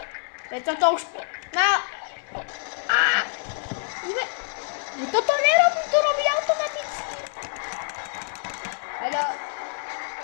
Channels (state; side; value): silent; right; 57 dB below the other